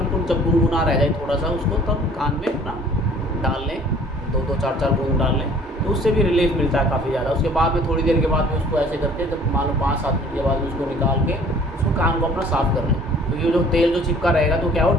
जब गुनगुना रह जाए थोड़ा सा, उसको तब कान में अपना डाल लें, 2-2 4-4 बूंद डाल लें, तो उससे भी रिलीफ मिलता है काफ़ी ज़्यादा। उसके बाद में थोड़ी देर के बाद में उसको ऐसे करके, जब मान लो 5-7 मिनट के बाद में उसको निकाल के उसको कान को अपना साफ़ कर लें, तो ये जो तेल जो चिपका रहेगा तो क्या हो,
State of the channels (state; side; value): normal; both; correlation 0.52